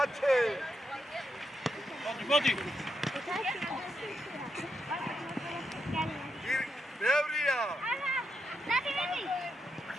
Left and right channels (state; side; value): normal; both; correlation 0.83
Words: ათე. მოდი. ბევრია.